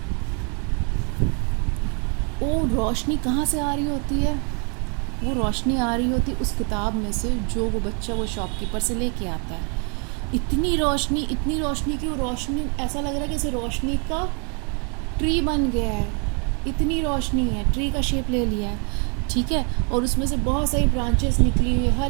वो रोशनी कहाँ से आ रही होती है? वो रोशनी आ रही होती उस किताब में से जो वो बच्चा वो शॉपकीपर से लेके आता है. इतनी रोशनी कि वो रोशनी ऐसा लग रहा है कि जैसे रोशनी का ट्री बन गया है. इतनी रोशनी है, ट्री का शेप ले लिया है, ठीक है, और उसमें से बहुत सारी ब्रांचेस निकली हुई है,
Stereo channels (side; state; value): left; quieter; 37.5 dB